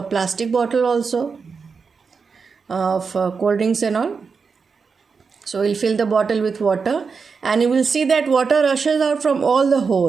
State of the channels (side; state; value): left; quieter; 5.3 dB